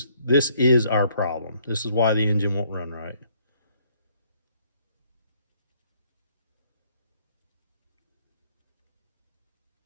our problem. This is why the engine won't run right.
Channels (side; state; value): both; inverted; correlation -0.65